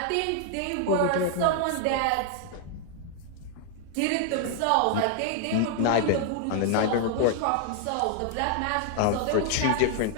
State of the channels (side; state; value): both; different; correlation 0.00